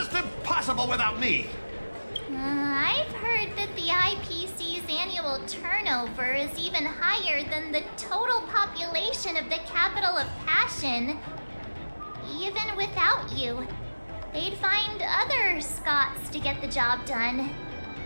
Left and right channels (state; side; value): inverted; both; correlation -1.00